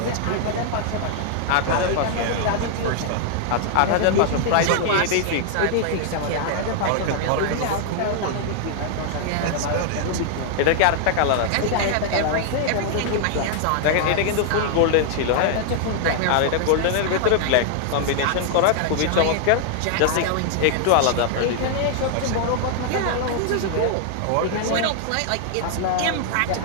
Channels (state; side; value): different; both; correlation 0.00